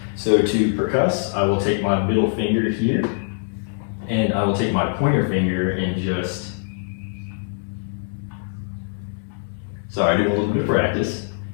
So to percuss, I will take my middle finger here, and I will take my pointer finger and just, sorry, do a little bit of practice.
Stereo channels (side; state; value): right; silent; digital silence